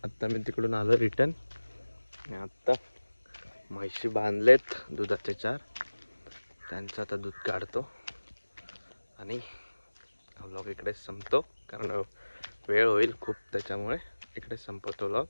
आत्ता मी तिकडून आलो रिटर्न. आत्ता म्हैशी बांधलेत दुधाचे 4. त्यांचं आता दूध काढतो आणि व्लॉग इकडे संपतो, कारण वेळ होईल खूप, त्याच्यामुळे इकडे संपवतो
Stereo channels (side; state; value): both; inverted; correlation -1.00